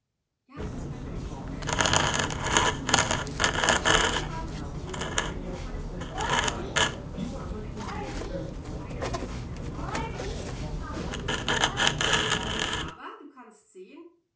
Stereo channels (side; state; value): both; identical; correlation 1.00